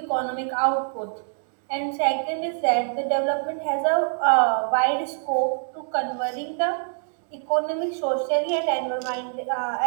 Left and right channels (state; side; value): silent; left; digital silence